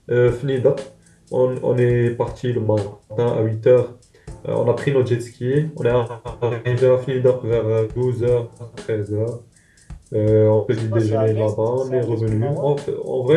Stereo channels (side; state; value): both; identical; correlation 1.00